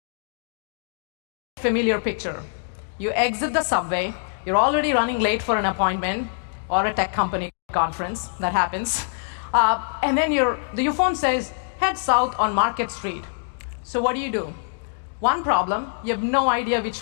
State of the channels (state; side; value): silent; right; digital silence